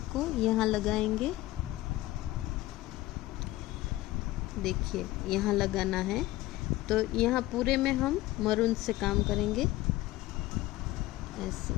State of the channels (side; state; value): right; quieter; 17.3 dB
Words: को यहाँ लगाएंगे। देखिए यहाँ लगाना है, तो यहाँ पूरे में हम मरून से काम करेंगे ऐसे।